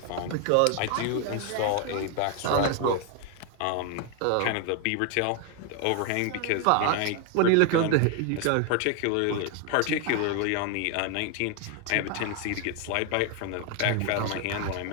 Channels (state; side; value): different; both; correlation 0.01